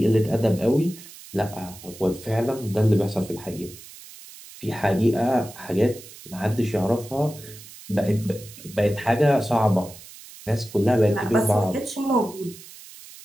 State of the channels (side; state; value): right; noise; hiss, 18 dB below the sound